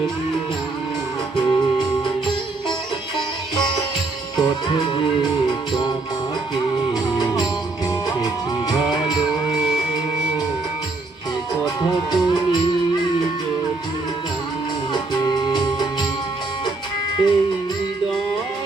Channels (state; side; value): quieter; left; 3.4 dB